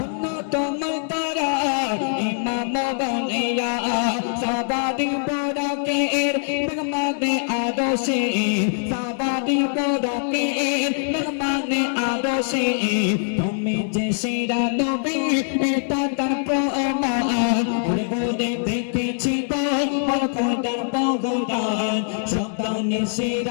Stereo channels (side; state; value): right; silent; digital silence